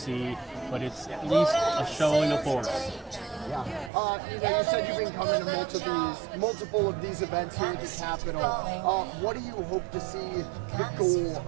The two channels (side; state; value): left; drops out; at 3.9 s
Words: but it's at least a showing of force. Yeah. You said you've been coming to multiple of these events here at the Capitol. What do you hope to see the goal